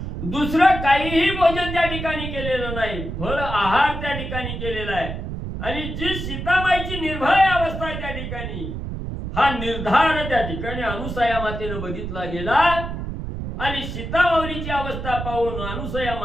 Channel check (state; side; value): noise; right; rumble, 6 dB below the sound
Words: दुसरं काहीही भोजन त्या ठिकाणी केलेलं नाही, फळ आहार त्या ठिकाणी केलेला आहे. आणि जी सीताबाईची निर्भय अवस्था आहे त्या ठिकाणी, हा निर्धार त्या ठिकाणी अनुसया मातेनं बघितला गेला. आणि सीता माऊलीची अवस्था पाहून अनुसया